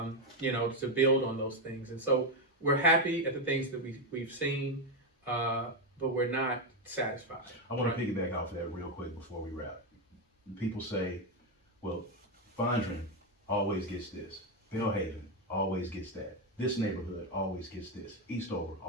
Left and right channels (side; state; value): both; normal; correlation 0.07